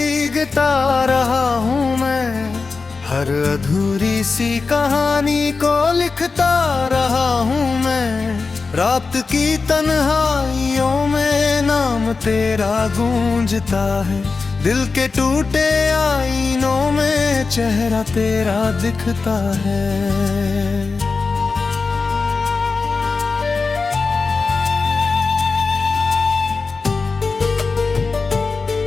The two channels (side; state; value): right; quieter; 4.3 dB